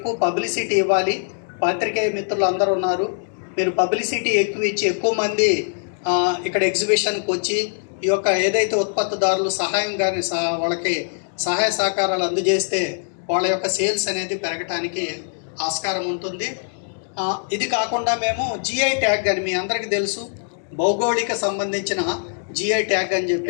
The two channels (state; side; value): silent; right; digital silence